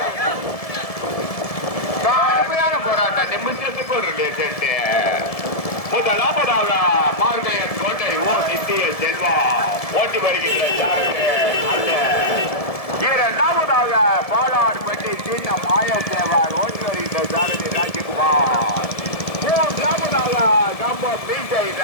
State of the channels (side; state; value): right; late; 1.7 ms